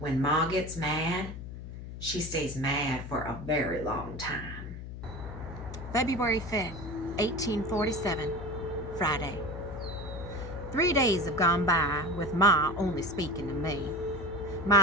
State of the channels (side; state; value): left; noise; hum, 10 dB below the sound